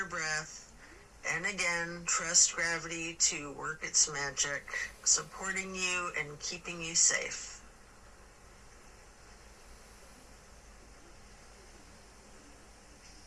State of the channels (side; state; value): both; identical; correlation 1.00